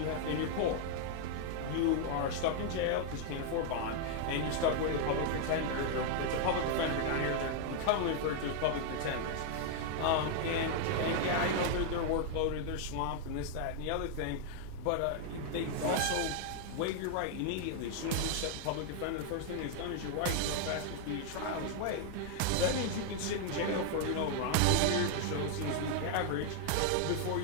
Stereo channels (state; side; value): different; both; correlation 0.00